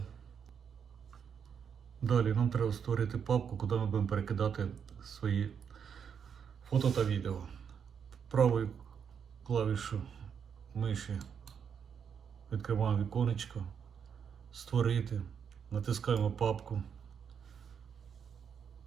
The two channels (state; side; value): quieter; left; 7.3 dB